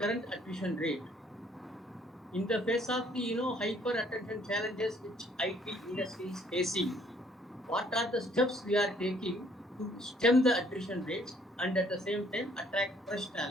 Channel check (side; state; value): both; normal; correlation 0.63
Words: current attrition rate? In the face of the hyper attention challenges which IT industry is facing, what are the steps we are taking to stem the attrition rates and at the same time attract fresh